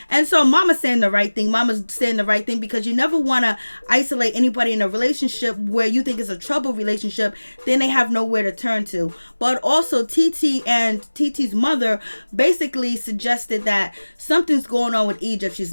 And so Mama's saying the right thing. Mama's saying the right thing, because you never want to isolate anybody in a relationship where you think it's a trouble relationship. Then they have nowhere to turn to. But also Titi and Titi's mother basically suggested that something's going on with Egypt. She's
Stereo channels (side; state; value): both; inverted; correlation -1.00